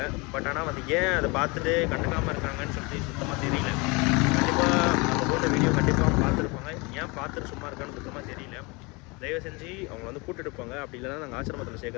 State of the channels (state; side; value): quieter; right; 27.3 dB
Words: பட் ஆனால் வந்து ஏன் அதை பார்த்துட்டு கண்டுக்காமல் இருக்காங்கன்னு சொல்லி சுத்தமாக தெரியல. கண்டிப்பாக நம்ம போட்ட வீடியோ கண்டிப்பாக பார்த்துருப்பாங்க. ஏன் பார்த்துட்டு சும்மா இருக்கான்னு சுத்தமாக தெரியல. தயவு செஞ்சு அவங்க வந்து கூட்டிகிட்டு போங்க. அப்படி இல்லைனா நாங்கள் ஆசிரமத்தில்